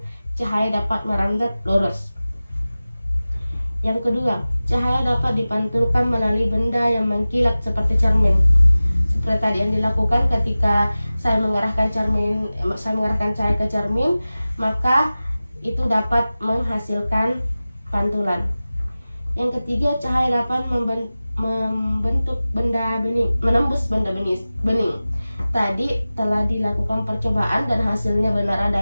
cahaya dapat merambat lurus. Yang kedua, cahaya dapat dipantulkan melalui benda yang mengkilat seperti cermin. Seperti tadi yang dilakukan ketika saya mengarahkan cahaya ke cermin, maka itu dapat menghasilkan pantulan. Yang ketiga, cahaya dapat membentuk benda bening, menembus benda bening. Tadi telah dilakukan percobaan dan hasilnya benar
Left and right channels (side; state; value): both; inverted; correlation -0.96